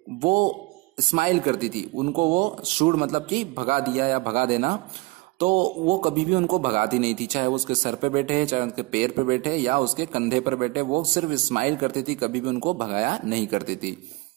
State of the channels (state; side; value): quieter; left; 24.1 dB